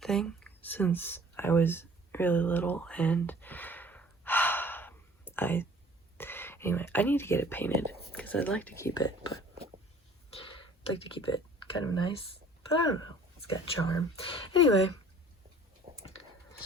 thing since I was really little, and anyway, I need to get it painted because I'd like to keep it, but I'd like to keep it kind of nice, but I don't know, it's got charm. Anyway,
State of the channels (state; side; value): normal; both; correlation 0.51